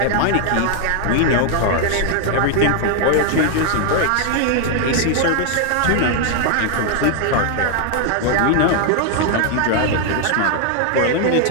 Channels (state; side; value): different; both; correlation 0.00